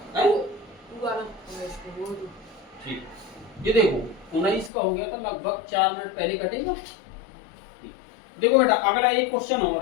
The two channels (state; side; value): drops out; right; at 4.7 s